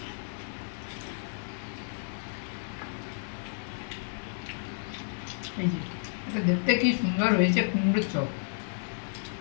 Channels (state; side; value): silent; right; digital silence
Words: এই যে এটা দেখতে কি সুন্দর হয়েছে, কুমড়োর চপ,